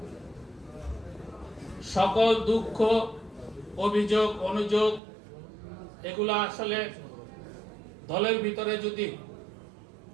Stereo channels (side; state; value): left; drops out; at 5.0 s